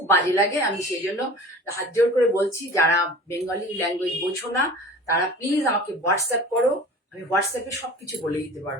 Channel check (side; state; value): both; normal; correlation 0.40